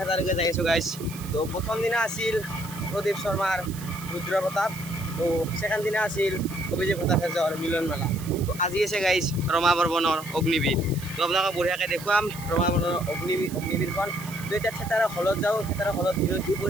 যাই আছোঁ গাইছ। তো প্ৰথম দিনা আছিল প্ৰদীপ শৰ্মাৰ ৰুদ্ৰ প্ৰতাপ, তো ছেকেণ্ড দিনা আছিল অভিজিৎ ভট্টাচাৰ্যৰ মিলন মেলা। তো আজি আছে গাইছ ৰমা বৰ্মনৰ অগ্নিবীৰ। তো আপোনালোকক বঢ়িয়াকৈ দেখুৱাম ৰমা বৰ্মনৰ অগ্নিবীৰখন। তো এতিয়া থেতাৰৰ হলত যাওঁ, থেতাৰৰ হলত দিনত কি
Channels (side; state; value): right; noise; hiss, 15 dB below the sound